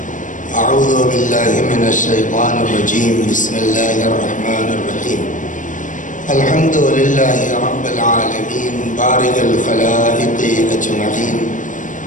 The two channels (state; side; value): late; right; 0.37 ms